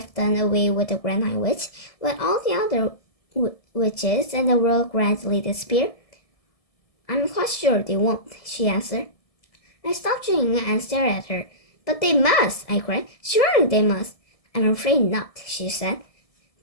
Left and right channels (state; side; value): late; right; 1.7 ms